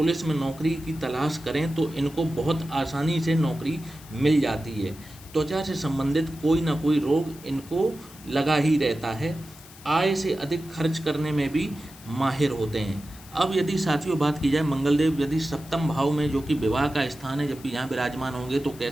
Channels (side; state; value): left; noise; hiss, 20 dB below the sound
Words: में नौकरी की तलाश करें तो इनको बहुत आसानी से नौकरी मिल जाती है। त्वचा से संबंधित कोई ना कोई रोग इनको लगा ही रहता है। आय से अधिक खर्च करने में भी माहिर होते हैं। अब यदि साथियों बात की जाए मंगलदेव यदि सप्तम भाव में जो कि विवाह का स्थान है, जब भी यहाँ विराजमान होंगे तो